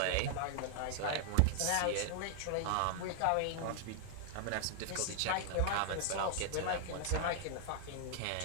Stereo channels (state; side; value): different; both; correlation 0.00